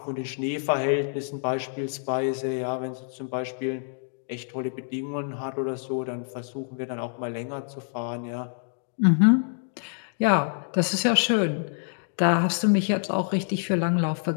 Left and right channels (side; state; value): right; silent; digital silence